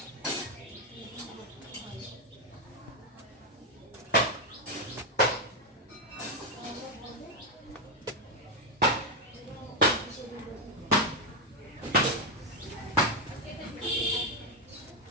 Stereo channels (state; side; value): normal; both; correlation 0.04